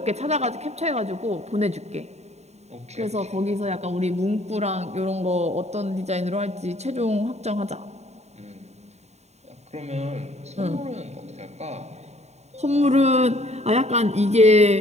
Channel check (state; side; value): late; left; 0.32 ms